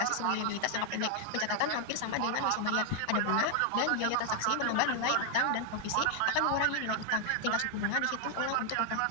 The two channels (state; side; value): different; both; correlation 0.00